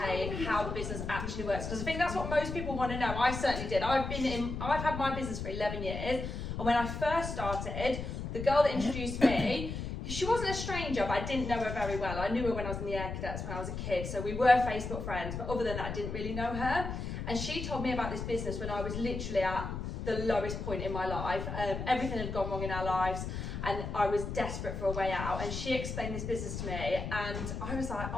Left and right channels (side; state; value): left; noise; rumble, 5 dB below the sound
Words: how the business actually works. Because I think that's what most people want to know. I certainly did. I've had my business for 11 years, and when I first started, the girl that introduced me, she wasn't a stranger, but I didn't know her very well. I knew her when I was in the Air Cadets when I was a kid, so we were Facebook friends, but other than that, I didn't really know her. And she told me about this business when I was literally at the lowest point in my life. Everything had gone wrong in our lives, and I was desperate for a way out. And she explained this business to me, and I was like,